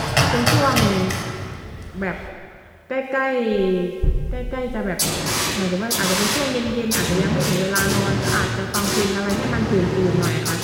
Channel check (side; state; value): both; identical; correlation 1.00